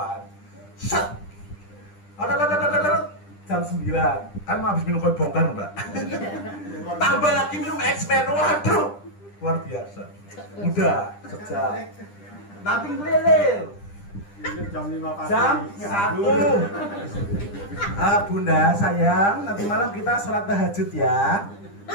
Set. Jam 9. Kan mau habis minum kopi bongkar, Mbak. Tambah lagi minum X-Men. Waduh. Luar biasa. Udah, sejam. Nanti ngelilir. Jam 5 pagi. Jam 1. Bunda, sayang, nanti malam kita sholat tahajud ya.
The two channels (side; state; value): right; late; 10 ms